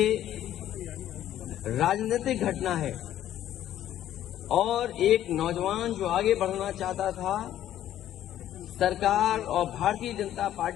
राजनीतिक घटना है, और एक नौजवान जो आगे बढ़ना चाहता था, सरकार और भारतीय जनता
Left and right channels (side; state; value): right; quieter; 12.1 dB